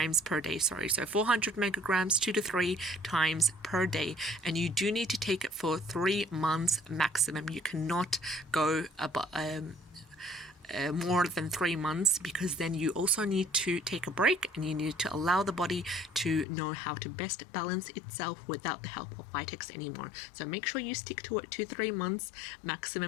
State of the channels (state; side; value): drops out; right; at 16.4 s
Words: per day. So 400 megagrams 2 to 3 times per day, and you do need to take it for 3 months maximum. You cannot go about more than 3 months, because then you also need to take a break and you need to allow the body to know how to best balance itself without the help of Vitex anymore. So make sure you stick to it 2 to 3 months